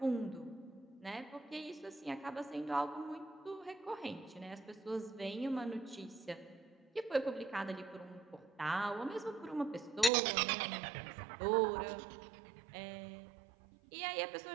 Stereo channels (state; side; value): drops out; left; at 10.1 s